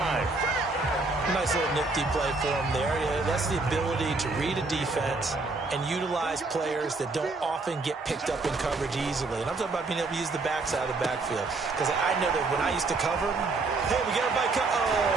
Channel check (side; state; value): left; quieter; 3.6 dB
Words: Nice little nifty play for him there. Yeah, that's the ability to read a defense and utilize players that don't often get picked up in coverage easily. And I'm talking about being able to use the backside of the backfield. Because I know that when I used to cover, hey, we got everybody